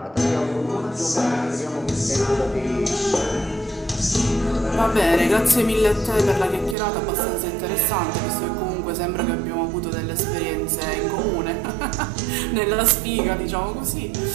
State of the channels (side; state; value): left; drops out; at 6.8 s